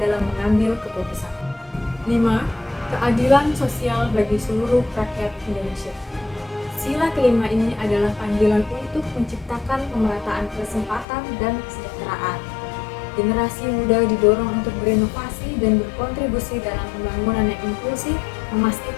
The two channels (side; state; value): right; drops out; at 11.1 s